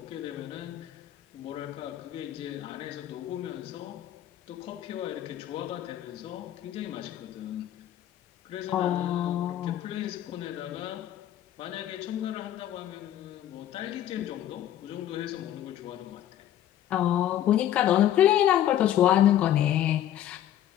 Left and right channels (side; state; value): right; quieter; 11.7 dB